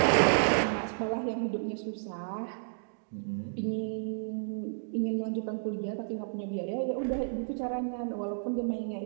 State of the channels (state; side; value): silent; left; digital silence